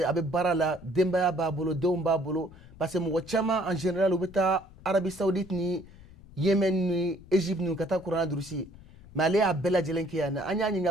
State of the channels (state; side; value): noise; left; rumble, 21 dB below the sound